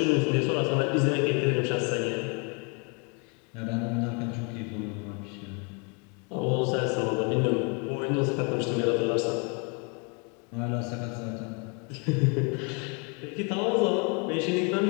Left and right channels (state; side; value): quieter; right; 34.2 dB